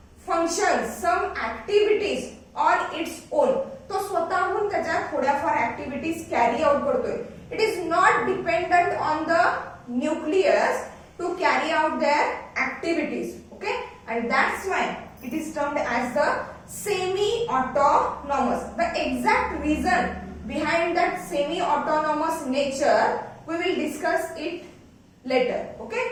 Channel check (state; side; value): identical; both; correlation 1.00